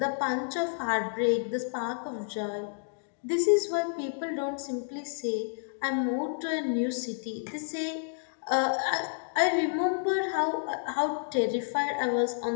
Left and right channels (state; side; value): silent; right; digital silence